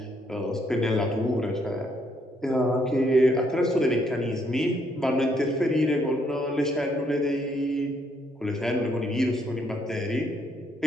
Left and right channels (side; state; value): both; normal; correlation 0.71